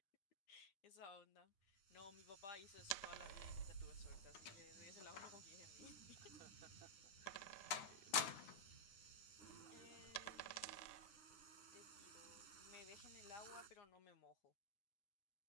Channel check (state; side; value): late; right; 9.8 ms